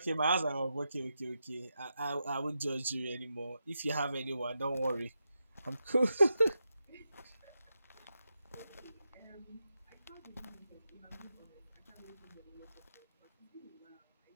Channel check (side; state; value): both; inverted; correlation -0.87